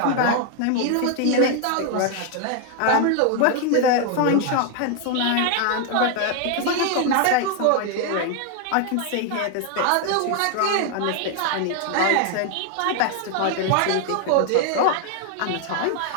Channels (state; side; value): different; both; correlation 0.00